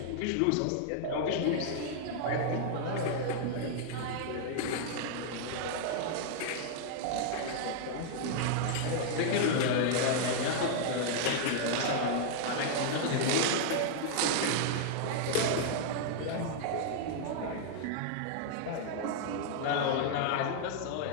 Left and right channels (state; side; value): different; both; correlation -0.01